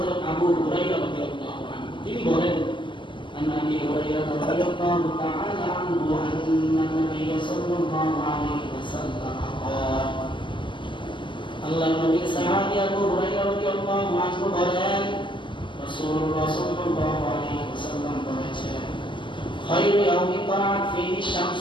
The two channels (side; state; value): right; late; 0.24 ms